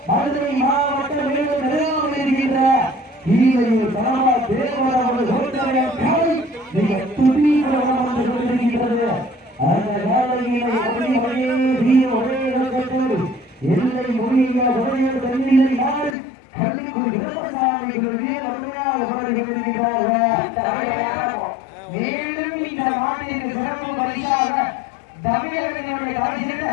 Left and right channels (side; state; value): right; drops out; at 16.2 s